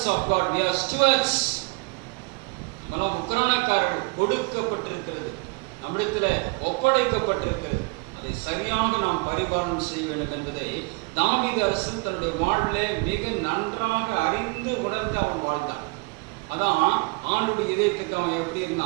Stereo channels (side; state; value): left; quieter; 29.1 dB